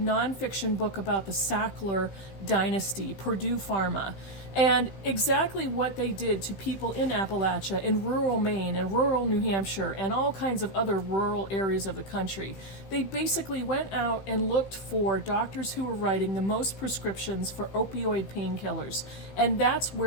book about the Sackler dynasty, Purdue Pharma, and exactly what they did to people in Appalachia, in rural Maine, and rural New Hampshire, and all kinds of other rural areas of the country. They basically went out and looked for doctors who were writing the most prescriptions for opioid painkillers, and that's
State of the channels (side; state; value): right; late; 15 ms